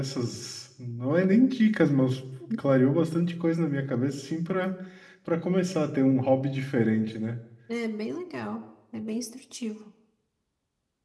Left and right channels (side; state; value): both; identical; correlation 1.00